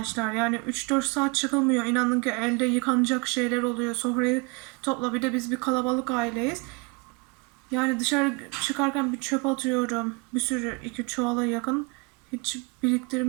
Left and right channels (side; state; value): left; quieter; 29.2 dB